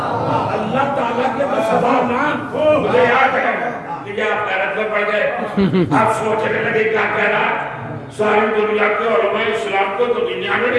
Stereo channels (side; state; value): both; identical; correlation 1.00